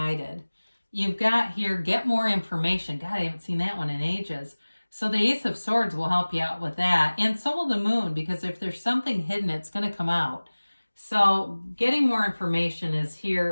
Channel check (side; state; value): both; inverted; correlation -1.00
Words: You've got here, get more information. God, I haven't seen that one in ages. So the Ace of Swords will help you out with that. And so will the Moon, because if there's something hidden, it's going to come out. So getting more information is